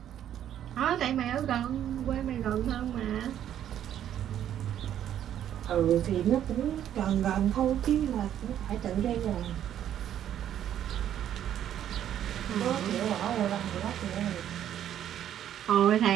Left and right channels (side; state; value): left; quieter; 10.6 dB